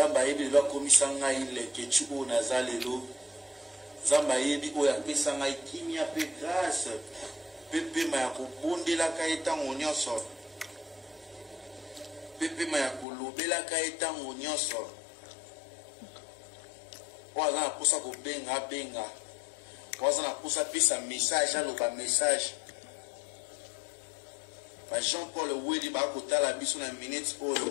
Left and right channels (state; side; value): drops out; right; at 13.1 s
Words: ayebi lelo akomisa ngai leketu oyo naza lelo nzambe ayebi oyo apesa ngai kimia mpe grâce mpe pema ya kobondelaka ye ntango nyonso mpe pema ya kolobelaka ye ntango nyonso oyo aza na mposa kobenga abenga oyo aza na mposa apesa message aloba message ba Jean Paul Wedi bakotala biso na minute